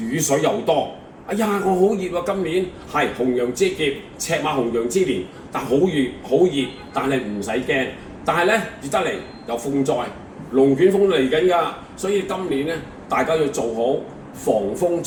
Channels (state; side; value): identical; both; correlation 1.00